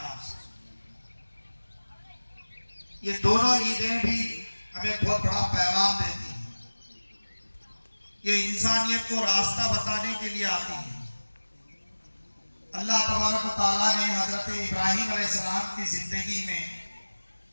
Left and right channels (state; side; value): inverted; both; correlation -1.00